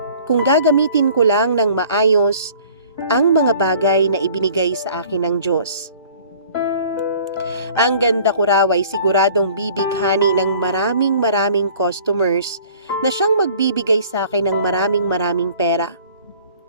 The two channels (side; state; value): both; inverted; correlation -0.51